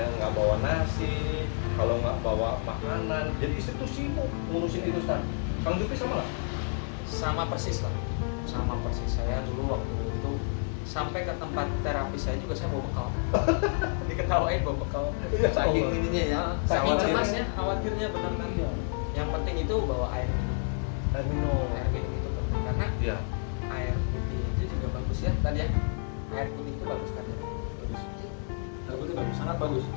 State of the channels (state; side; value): silent; right; 58 dB below the other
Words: nggak bawa nasi, kalau nggak bawa makanan. Jadi istri tuh sibuk ngurusin itu Ustaz. Kang Jupri sama lah? Sama persis lah, sama persis. Saya dulu waktu itu sampai ke tempat terapi saya juga saya bawa bekal. Diketawain bawa bekal. Saking ininya ya, Saking khawatir. cemasnya, khawatirnya benar kan. Yang penting itu bawa air minum. Air minum. Air minum itu penting karena Iya. air putih itu juga bagus ya tadi ya. Air putih itu bagus tadi. Bagus. Air putih bagus, sangat bagus.